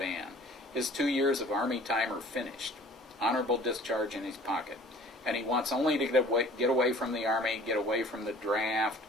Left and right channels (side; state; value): both; normal; correlation 0.49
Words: His 2 years of Army time are finished, honorable discharge in his pocket, and he wants only to get away from the Army, get away from the draft,